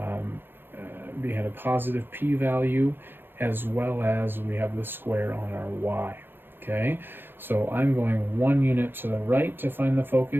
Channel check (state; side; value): late; left; 0.10 ms